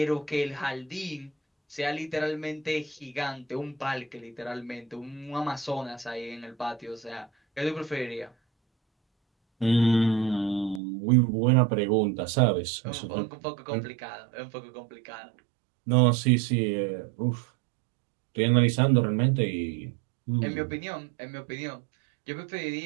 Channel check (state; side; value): drops out; left; at 10.8 s